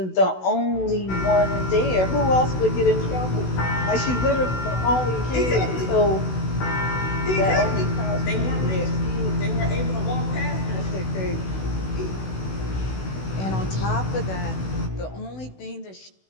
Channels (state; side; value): late; right; 16 ms